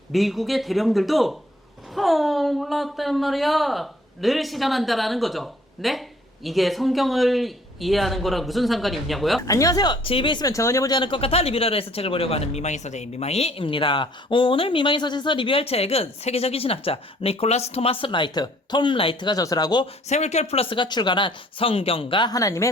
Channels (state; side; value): normal; both; correlation 0.59